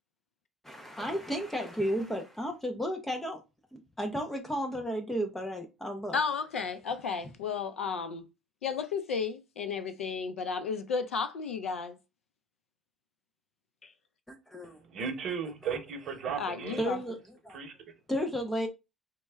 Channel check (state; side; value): normal; both; correlation 0.54